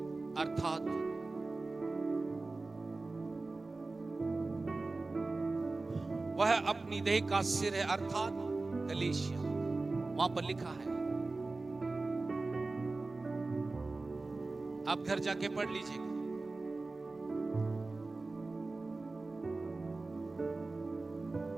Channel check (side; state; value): left; quieter; 3.4 dB